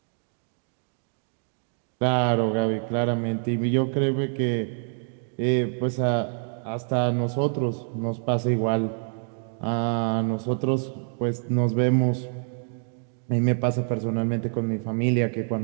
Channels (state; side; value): silent; left; digital silence